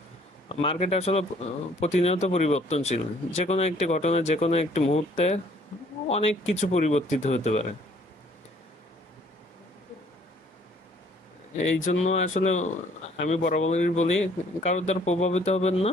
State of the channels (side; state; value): both; normal; correlation 0.60